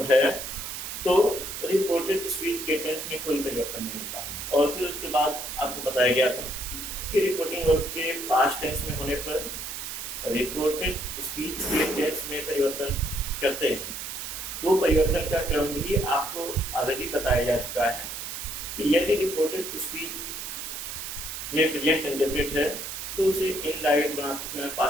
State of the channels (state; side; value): noise; right; hiss, 7 dB below the sound